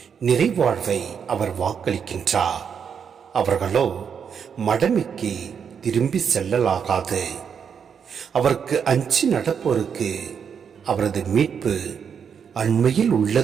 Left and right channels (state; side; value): quieter; left; 7.1 dB